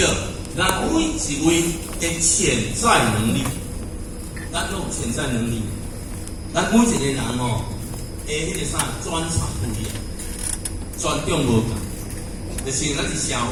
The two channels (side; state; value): both; identical; correlation 1.00